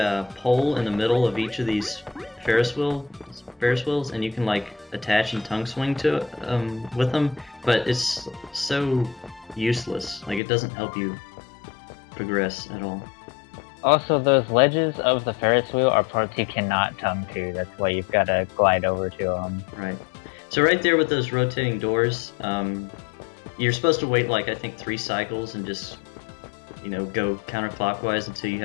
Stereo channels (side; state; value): right; drops out; at 10.4 s